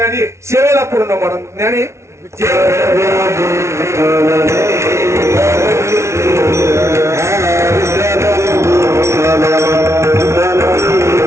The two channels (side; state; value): left; late; 0.13 ms